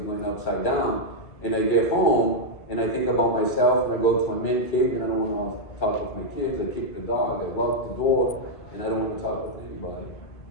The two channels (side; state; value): right; late; 2.5 ms